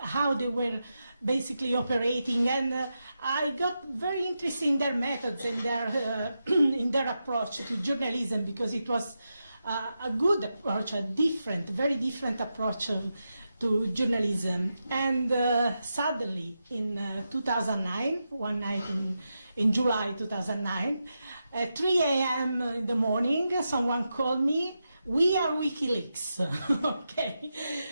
they were basically operating, and I got very interested in their methods and in their approach to journalism, because it was a good approach, a very different approach to journalism. And suddenly, in 2009, one night in July 2009, at 3 a.m. in the morning, someone called me we are WikiLeaks, okay?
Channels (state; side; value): inverted; both; correlation -0.88